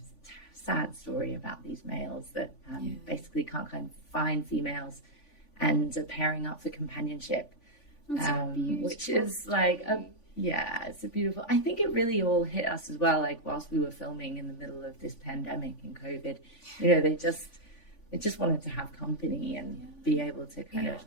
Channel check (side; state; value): right; late; 3.5 ms